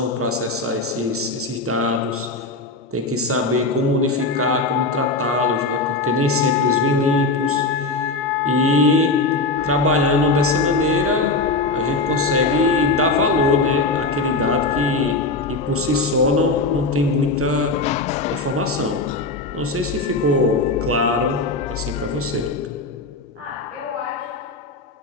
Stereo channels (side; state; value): right; quieter; 3.3 dB